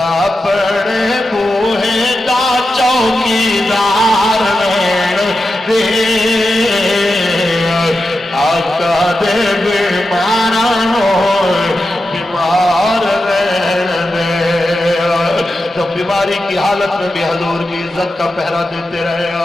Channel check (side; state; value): both; normal; correlation 0.90